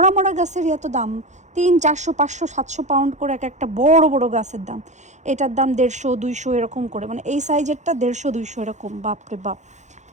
গাছের এত দাম, 300 400 500 700 পাউন্ড করে একটা বড় বড় গাছের দাম। এটার দাম 150 200 এরকম করে, মানে এই সাইজেরটা 150 200 এরকম, বাপরে বাপ।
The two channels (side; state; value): left; late; 0.34 ms